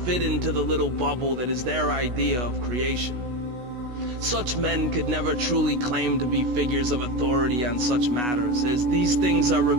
into the little bubble that is their idea of creation. Such men could never truly claim to be figures of authority on such matters, as these things are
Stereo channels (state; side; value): late; left; 16 ms